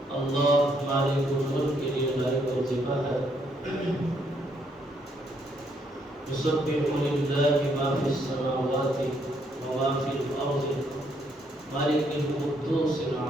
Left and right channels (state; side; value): normal; both; correlation 0.72